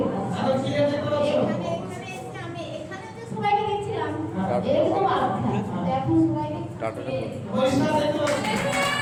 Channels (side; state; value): both; identical; correlation 1.00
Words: এখন কি দেখতে পাচ্ছ? এখানে আমি এখানে যে সবাইকে দেখছিলাম একদম আচ্ছা। এখন সবাইকে পরিষ্কার দেখতে পাচ্ছ?